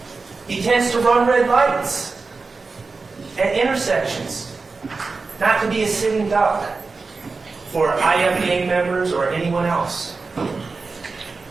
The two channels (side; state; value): left; quieter; 4.2 dB